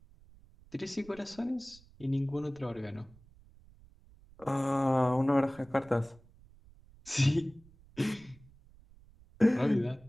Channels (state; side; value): noise; right; rumble, 25 dB below the sound